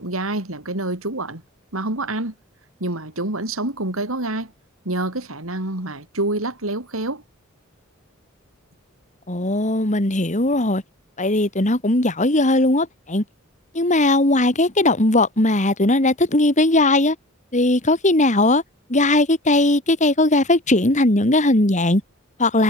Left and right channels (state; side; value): normal; both; correlation 0.40